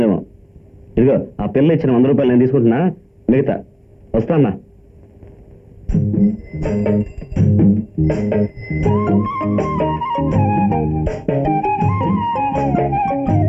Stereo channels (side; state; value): both; identical; correlation 1.00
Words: ఇదిగో ఆ పిల్ల ఇచ్చిన 100 రూపాయలు నేను తీసుకుంటున్నా, మిగతా వస్తానా.